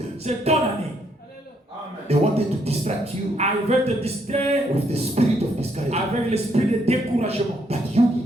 c'est ton année. They wanted to distract you Ah, il veut te distraire with the spirit of discouragement. avec l'esprit de découragement. But you need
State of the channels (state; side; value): normal; both; correlation 0.72